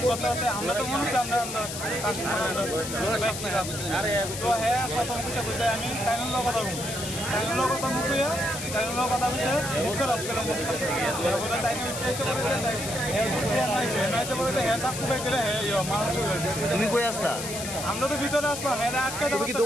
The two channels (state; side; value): noise; left; hiss, 7 dB below the sound